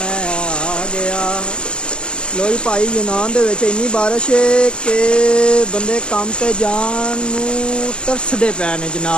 ਆ ਗਿਆ। ਲੋਈ ਭਾਈ ਯੂਨਾਨ ਦੇ ਵਿੱਚ ਇੰਨੀ ਬਾਰਿਸ਼ ਹੈ ਕਿ ਬੰਦੇ ਕੰਮ ਤੇ ਜਾਣ ਨੂੰ ਤਰਸਦੇ ਪਏ ਨੇ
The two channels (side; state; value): right; late; 0.056 ms